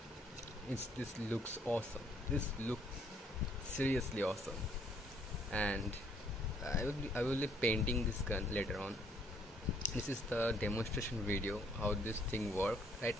this looks awesome. This looks seriously awesome, and I will be painting this gun later on. This is the demonstration video how this thing works. Right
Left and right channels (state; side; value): normal; both; correlation 0.66